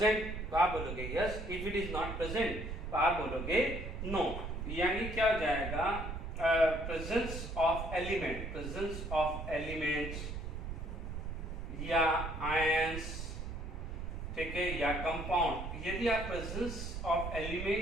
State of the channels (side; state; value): right; noise; rumble, 6 dB below the sound